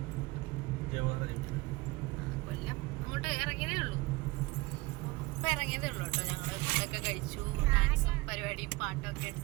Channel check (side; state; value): left; quieter; 22.7 dB